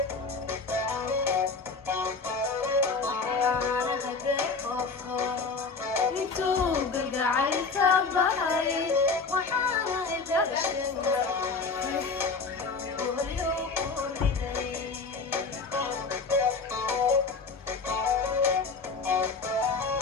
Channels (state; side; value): quieter; right; 4.4 dB